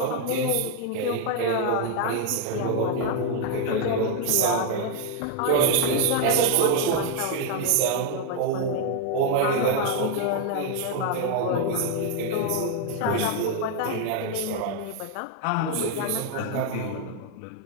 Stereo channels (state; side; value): different; both; correlation 0.01